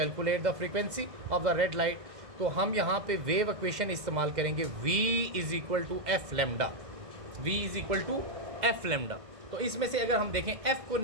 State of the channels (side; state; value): left; late; 2.1 ms